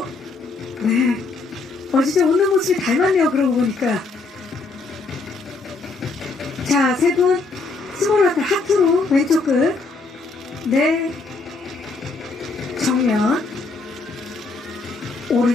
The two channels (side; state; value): right; quieter; 3.8 dB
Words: 네. 진짜 웃는 모습이 닮았네요. 그러고 보니까. 자, 세 분 스몰 하트로 왼쪽 끝. 네. 정면